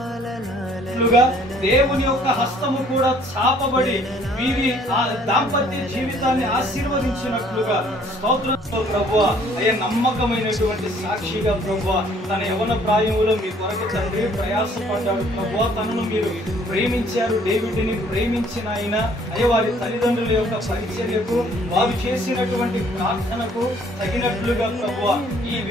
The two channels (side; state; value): both; normal; correlation 0.59